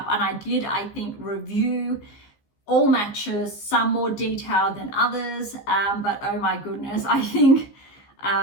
And I think, review all matches, some more detailed than others. But oh my goodness, I think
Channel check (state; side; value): late; right; 15 ms